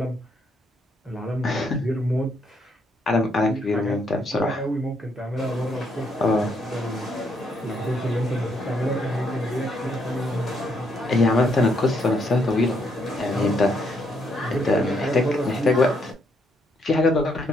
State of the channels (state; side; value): normal; both; correlation 0.74